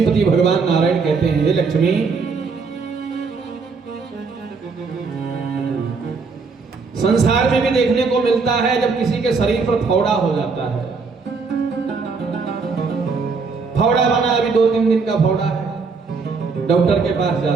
भगवान नारायण कहते हैं, हे लक्ष्मी, संसार में भी देखने को मिलता है जब किसी के शरीर पर फौड़ा हो जाता है। फौड़ा बना, अभी 2-3 दिन का फौड़ा है, डॉक्टर के पास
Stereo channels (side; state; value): left; quieter; 4.7 dB